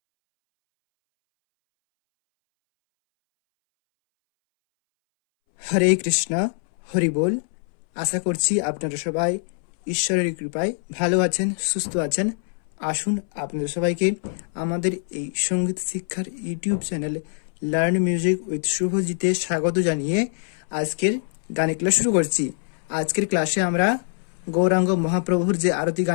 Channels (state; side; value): silent; right; 63 dB below the other